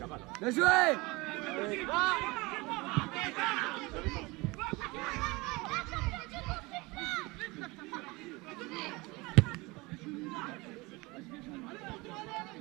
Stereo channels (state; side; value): quieter; left; 23.9 dB